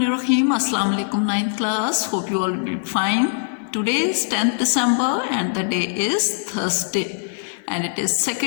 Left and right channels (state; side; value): silent; right; digital silence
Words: Assalamu alaikum 9th class. Hope you all will be fine. Today is 10th December and the day is Thursday. And it is